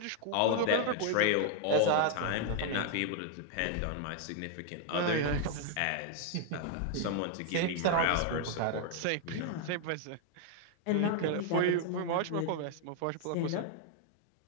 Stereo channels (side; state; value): both; different; correlation 0.00